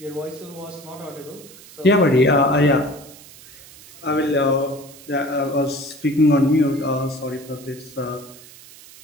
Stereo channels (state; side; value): noise; right; hiss, 20 dB below the sound